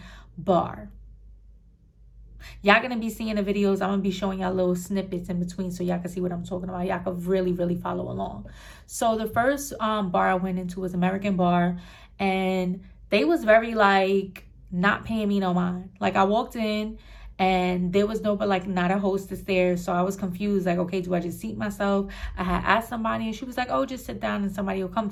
Bar. Y'all gonna be seeing the videos. I'm gonna be showing y'all little snippets in between so y'all can see what I'm talking about. Y'all can really follow along. So the first bar I went into was American Bar, and they was very like not paying me no mind. Like I walked in and there was not a hostess there, so I was confused. Like, okay, do I just seat myself? I had asked somebody, and she was like, oh, just sit down and somebody will come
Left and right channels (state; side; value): identical; both; correlation 1.00